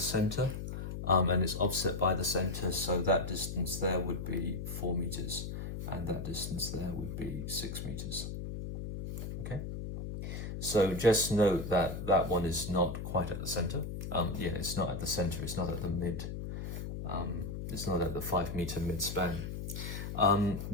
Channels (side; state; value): left; noise; hum, 6 dB below the sound